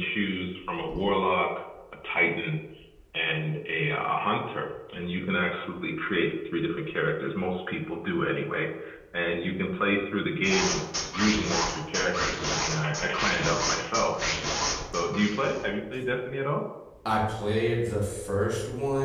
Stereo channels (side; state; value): both; identical; correlation 1.00